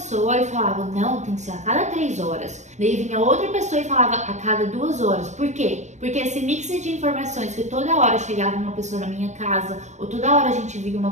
e falava, não, tem que ser a cada 3 horas. Daí vinha outra pessoa e falava a cada 2 horas. Por quê? Porque esse mix de informações, que toda hora chegava uma pessoa na minha casa, ou toda hora a gente via uma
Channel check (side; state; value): left; late; 0.34 ms